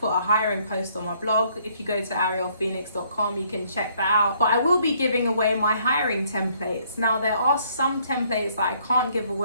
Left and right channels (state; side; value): inverted; both; correlation -0.65